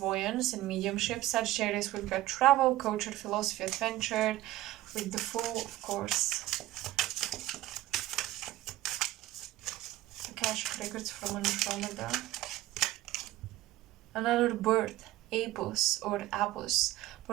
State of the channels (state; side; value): quieter; left; 16.0 dB